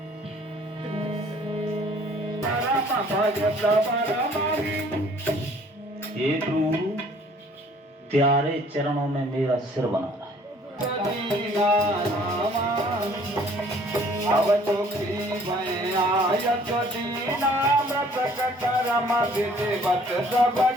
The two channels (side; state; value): both; normal; correlation 0.57